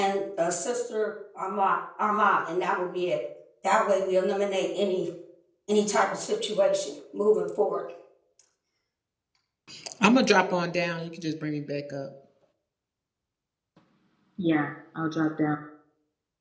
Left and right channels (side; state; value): both; identical; correlation 1.00